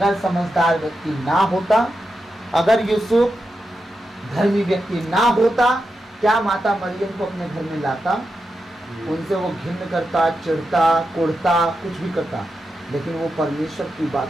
समझदार व्यक्ति ना होता, अगर यूसुफ धर्मी व्यक्ति ना होता, क्या माता मरियम को अपने घर में लाता? उनसे वो घिन्न करता, चिढ़ता, कुढ़ता, कुछ भी करता, लेकिन वो परमेश्वर की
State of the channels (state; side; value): normal; both; correlation 0.88